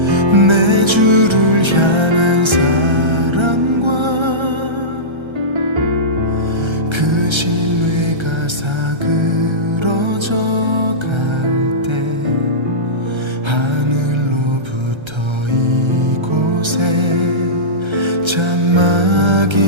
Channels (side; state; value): left; late; 1.3 ms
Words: 내 주를 향한 사랑과 그 신뢰가 사그러져 갈 때 하늘로부터 이곳에